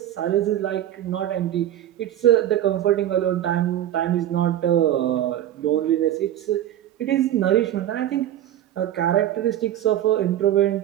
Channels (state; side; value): quieter; left; 12.0 dB